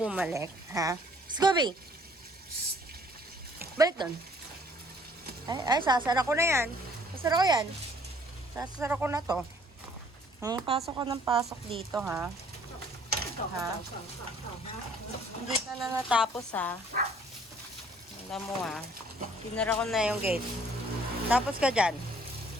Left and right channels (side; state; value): both; normal; correlation 0.59